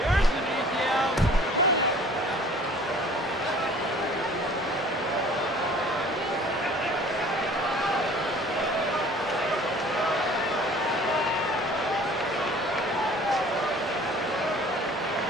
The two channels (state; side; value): normal; both; correlation 0.49